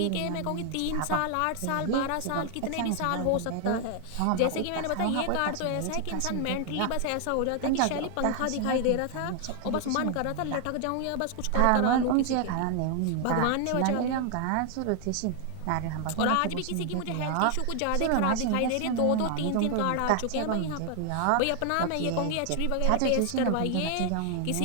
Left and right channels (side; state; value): both; different; correlation 0.00